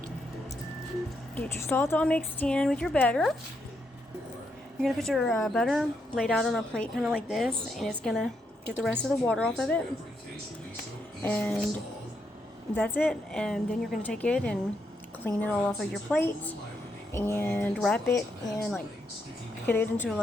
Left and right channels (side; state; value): both; normal; correlation 0.79